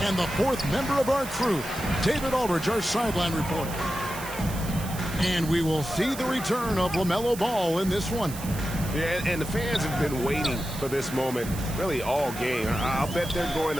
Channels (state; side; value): noise; right; hiss, 12 dB below the sound